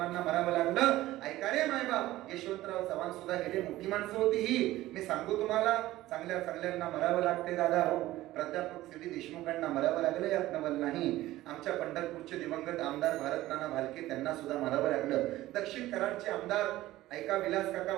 मरावं लागलं। ऐका रे मायबाप, यशवंतराव चव्हाण सुद्धा गेले, मोठी माणसं होती ही। मी सांगू तुम्हाला, चांगल्या चांगल्यांना मरावं लागते दादा हो। प्राध्यापक CD देशमुखांना मरावं लागलं यात नवल नाही। आमच्या पंढरपूरचे दिवंगत आमदार भारत नाना भालके, त्यांना सुद्धा मरावं लागलं। दक्षिण कराडचे आमदार ऐका विलास काका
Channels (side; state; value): left; quieter; 16.2 dB